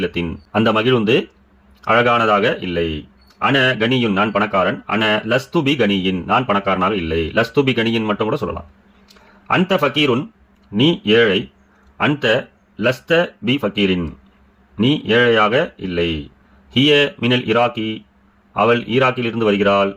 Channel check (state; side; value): identical; both; correlation 1.00